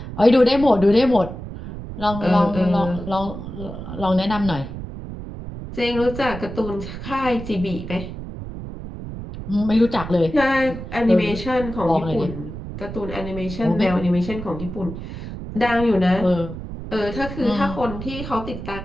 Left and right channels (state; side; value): noise; right; rumble, 9 dB below the sound